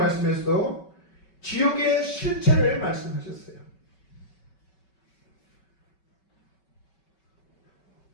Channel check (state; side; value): late; right; 5.3 ms